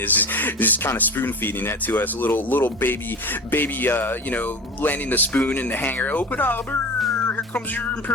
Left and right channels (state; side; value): normal; both; correlation 0.32